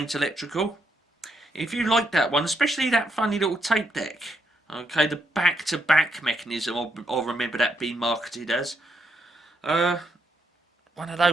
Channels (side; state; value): both; normal; correlation 0.78